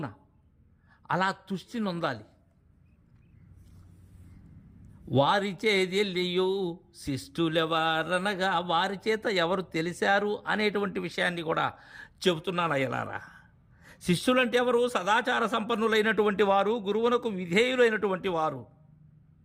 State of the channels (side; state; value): both; identical; correlation 1.00